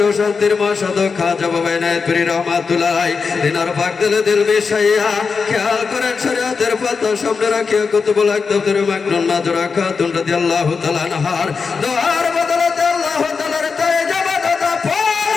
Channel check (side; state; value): right; quieter; 5.1 dB